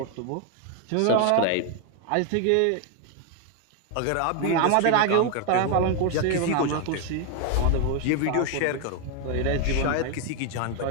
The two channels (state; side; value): different; both; correlation 0.01